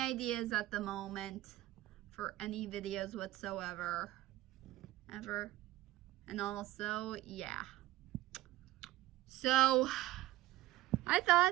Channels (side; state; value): left; quieter; 16.0 dB